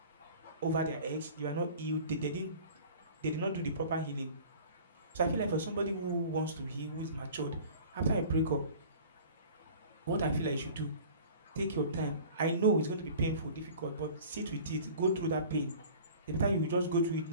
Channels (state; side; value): inverted; both; correlation -0.44